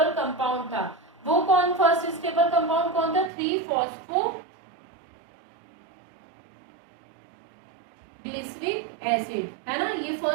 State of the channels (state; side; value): drops out; left; at 3.3 s